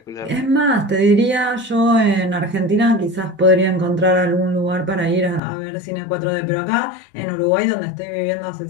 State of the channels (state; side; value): drops out; right; at 5.4 s